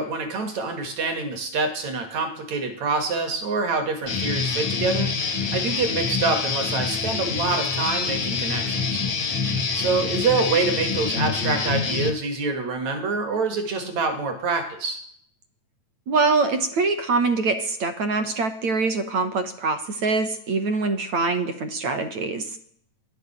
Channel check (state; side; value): late; left; 9.0 ms